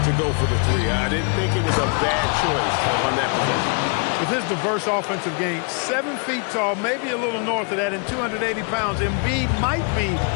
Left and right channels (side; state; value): right; quieter; 38.4 dB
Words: to go for the 3. I didn't think it was a bad choice on that possession. With his diverse offensive game, 7 feet tall, maybe a little north of that, and 280 pounds, Embiid might be